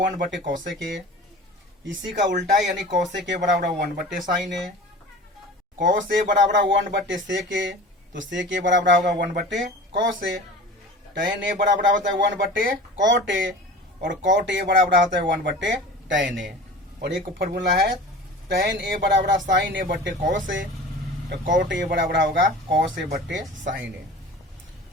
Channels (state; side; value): normal; both; correlation 0.38